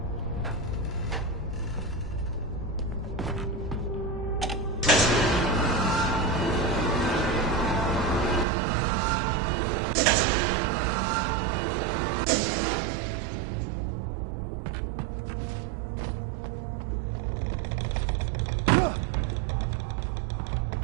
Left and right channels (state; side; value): drops out; left; at 8.5 s